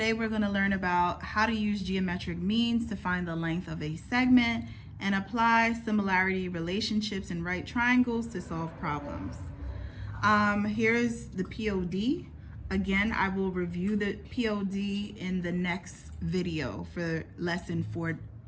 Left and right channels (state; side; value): identical; both; correlation 1.00